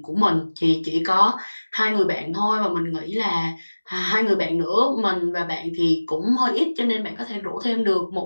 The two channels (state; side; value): inverted; both; correlation -1.00